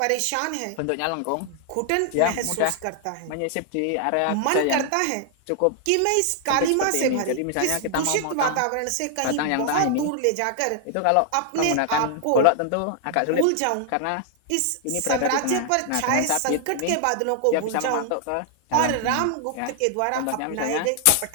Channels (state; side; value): different; both; correlation 0.00